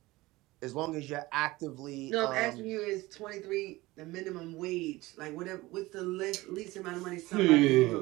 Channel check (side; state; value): left; quieter; 19.8 dB